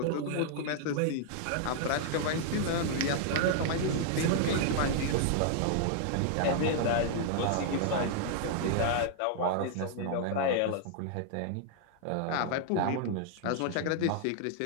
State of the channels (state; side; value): different; both; correlation -0.01